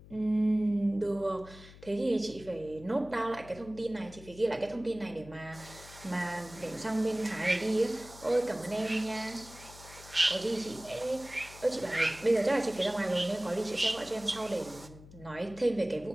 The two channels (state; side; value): noise; left; hum, 19 dB below the sound